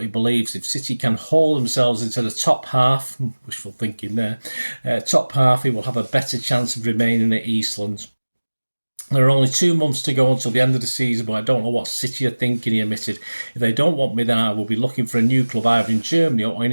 he believes if City can haul themselves into the top half, wishful thinking there, top half, he will have a better chance of remaining at Eastlands. "There are only 2 months to go until the end of the season, but I don't know what City are thinking," he admitted. "If they don't want me, then I will be looking for a new club either in Germany or in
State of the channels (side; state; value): both; inverted; correlation -1.00